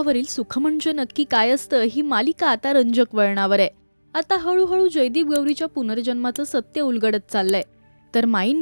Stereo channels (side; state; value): both; inverted; correlation -1.00